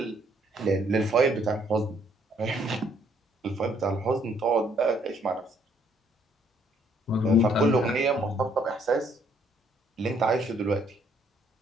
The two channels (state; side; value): normal; both; correlation 0.67